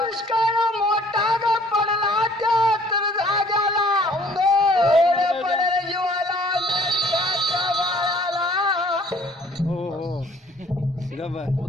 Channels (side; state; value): both; normal; correlation 0.55